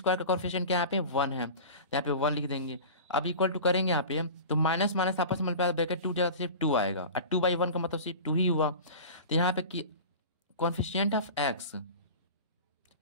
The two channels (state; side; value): inverted; both; correlation -0.35